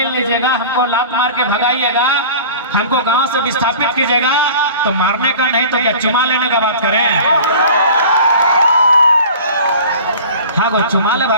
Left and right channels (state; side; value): inverted; both; correlation -0.41